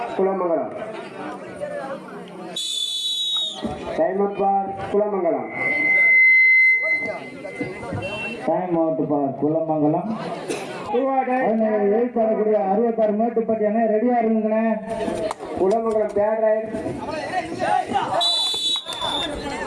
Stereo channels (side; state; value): both; identical; correlation 1.00